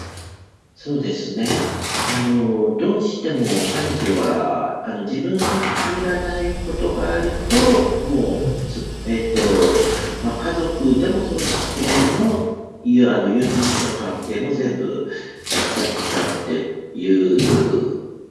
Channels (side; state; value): both; identical; correlation 1.00